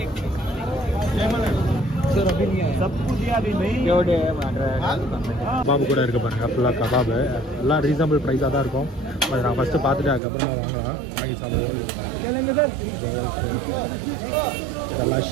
கபாபு கூட இருக்க பாருங்க, ஃபுல்லாக கபாபு எல்லாம் ரீசனபிள் ப்ரைஸாக தான் இருக்கும். அது நான் ஃபஸ்ட்டு பார்த்துட்டு அதுக்கப்புறமா வாங்கலாம், வாங்கி சாப்பிடுவோம். இதெல்லாம்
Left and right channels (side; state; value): left; drops out; at 10.2 s